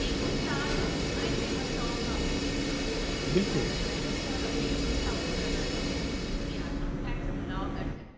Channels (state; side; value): identical; both; correlation 1.00